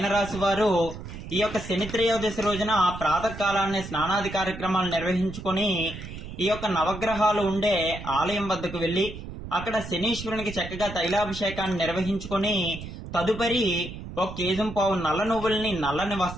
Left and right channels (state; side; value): noise; right; rumble, 10 dB below the sound